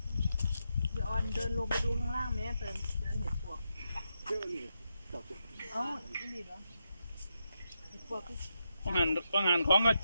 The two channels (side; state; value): both; inverted; correlation -0.85